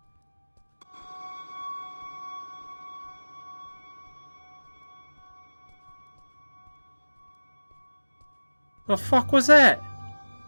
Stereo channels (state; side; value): inverted; both; correlation -1.00